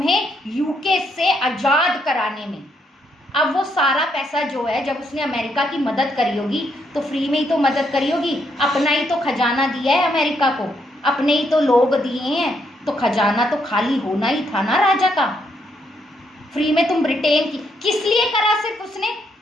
यूके से आज़ाद कराने में। अब वो सारा पैसा जो है, जब उसने अमेरिका की मदद करी होगी तो फ्री में ही तो मदद करी होगी, अपना ही तो खजाना दिया है अमेरिका को, अपने ही तो लोग दिए हैं, तो खजाना तो खाली होना ही था ना राजा का। फ्री में तुम ब्रिटेन की किस लिए करा? सिर्फ उसने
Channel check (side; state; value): both; normal; correlation 0.75